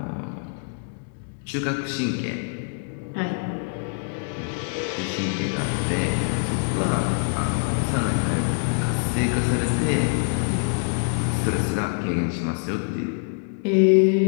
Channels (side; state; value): right; silent; digital silence